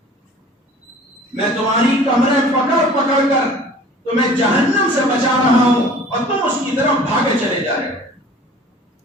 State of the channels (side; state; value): both; normal; correlation 0.47